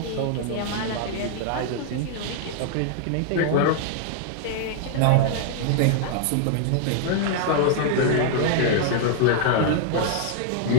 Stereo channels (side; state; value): both; different; correlation 0.00